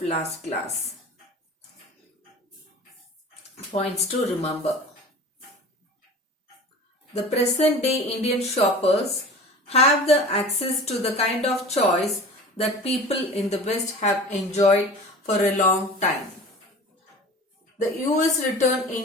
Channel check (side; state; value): both; normal; correlation 0.38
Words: last class. Points to remember. The present day Indian shoppers have the access to the kind of choice that people in the West have enjoyed for a long time. The US returned